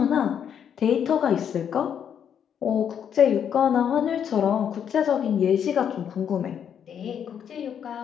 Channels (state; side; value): quieter; right; 8.4 dB